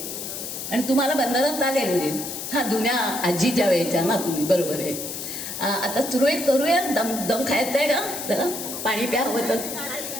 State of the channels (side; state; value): left; noise; hiss, 7 dB below the sound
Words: आणि तुम्हाला बंधनात आले म्हणजे हां जुन्या आजीच्या वेळेच्या ना तुम्ही, बरोबर आहे. आता सुरळीत करूया. दम दम खायचं आहे का जरा, पाणी प्या हवं तर.